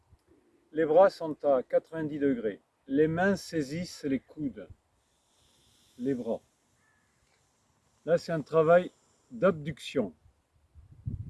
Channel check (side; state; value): both; identical; correlation 1.00